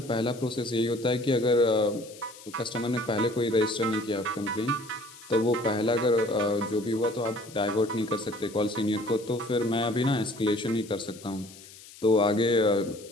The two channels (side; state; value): left; noise; hiss, 19 dB below the sound